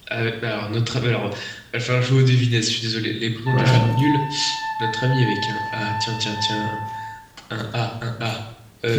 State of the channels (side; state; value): both; identical; correlation 1.00